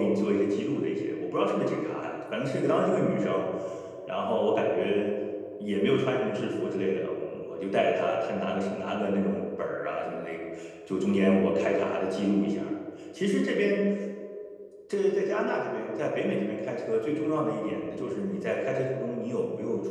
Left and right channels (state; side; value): identical; both; correlation 1.00